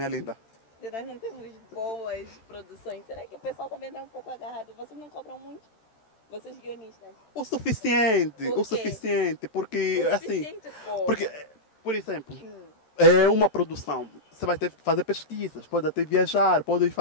linda. De nós não termos boas produções, será que o pessoal também está um pouco agarrado? Vocês não cobram muito? Vocês guionistas? O suficiente, porque O assim... suficiente como? Porque, por exemplo, é uma produção. Você vai ter que fazer pesquisas, pode até viajar, pode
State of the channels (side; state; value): right; late; 13 ms